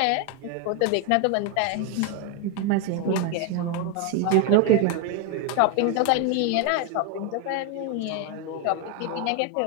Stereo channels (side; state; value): both; different; correlation 0.01